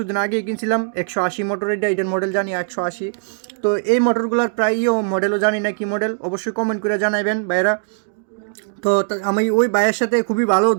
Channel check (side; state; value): left; silent; 62 dB below the other